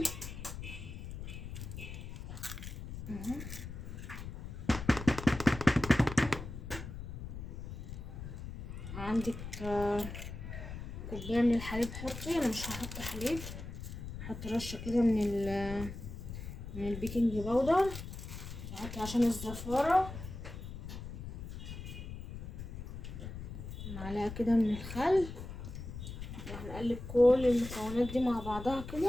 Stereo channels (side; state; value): left; noise; rumble, 9 dB below the sound